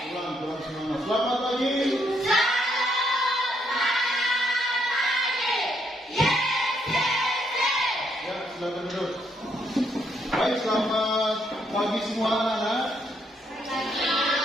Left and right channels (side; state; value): both; normal; correlation 0.74